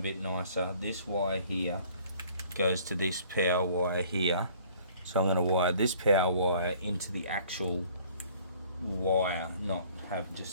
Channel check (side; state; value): both; inverted; correlation -0.54